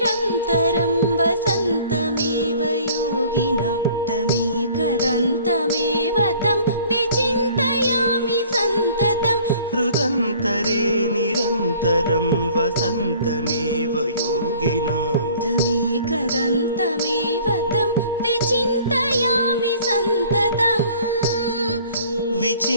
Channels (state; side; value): inverted; both; correlation -0.52